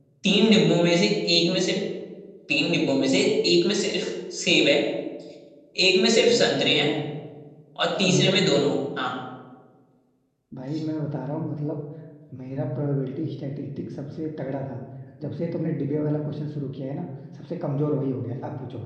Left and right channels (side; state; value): both; identical; correlation 1.00